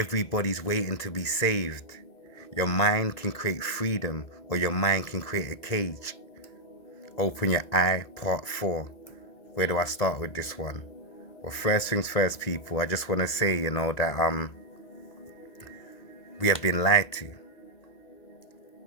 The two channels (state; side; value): late; right; 1.8 ms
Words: waiting to be saved. Your mind can create freedom, or your mind can create a cage. Open your eye, part 4. Where do I start with this one? Well, first things first, people, I just want to say, that we have been lied to,